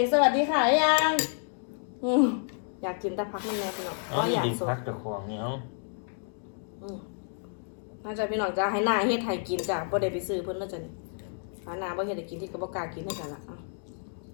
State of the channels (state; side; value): silent; right; digital silence